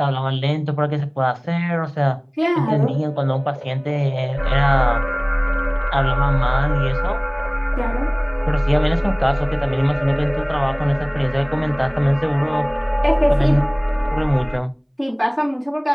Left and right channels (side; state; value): both; identical; correlation 1.00